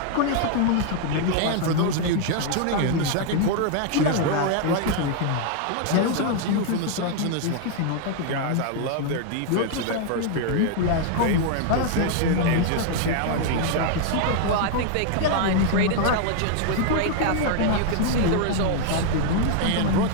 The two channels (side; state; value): both; different; correlation 0.00